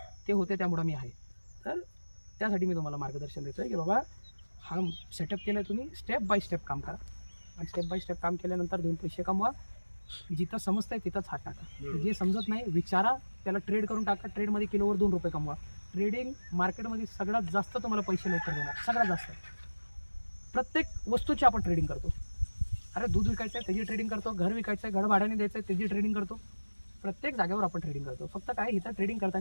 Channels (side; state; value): both; inverted; correlation -1.00